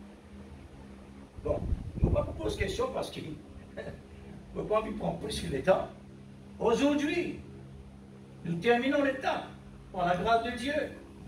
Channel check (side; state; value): both; identical; correlation 1.00